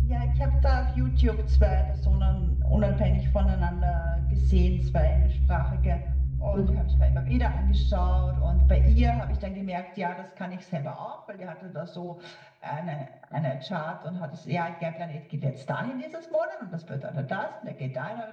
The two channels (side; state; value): both; identical; correlation 1.00